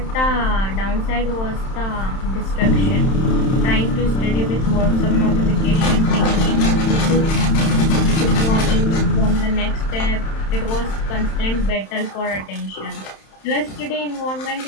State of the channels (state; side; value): late; right; 31 ms